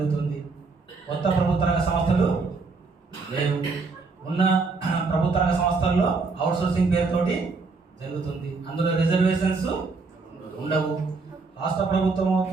కొత్త ప్రభుత్వ రంగ సంస్థలు లేవు. ఉన్న ప్రభుత్వ రంగ సంస్థల్లో అవుట్సోర్సింగ్ పేరుతోటి జరుగుతుంది. అందులో రిజర్వేషన్స్ ఉండవు. రాష్ట్ర ప్రభుత్వం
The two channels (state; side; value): quieter; left; 4.2 dB